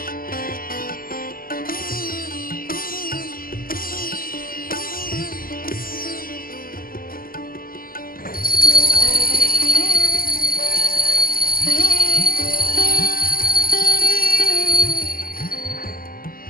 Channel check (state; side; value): late; right; 0.42 ms